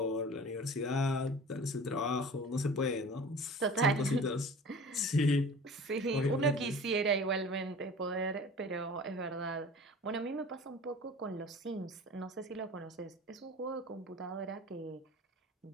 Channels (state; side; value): normal; both; correlation 0.41